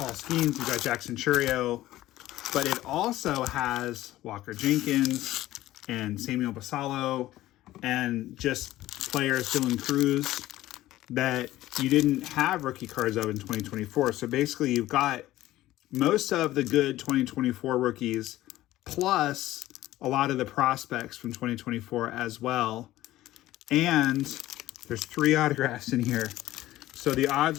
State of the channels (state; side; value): quieter; right; 15.5 dB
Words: Skeens, you've got Jackson Churio, but it also has Walker Jenkins and Samuel Basallo and just players, Dylan Cruz, that you didn't have rookie cards of in 2024. So basically you've got most of the good 2024 rookies plus a lot of the prospects from 2024 as well. And there's 3 autographs in here. So the